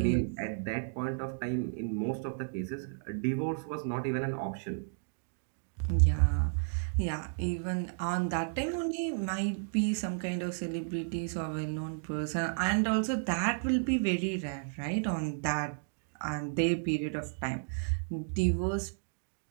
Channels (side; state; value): left; silent; digital silence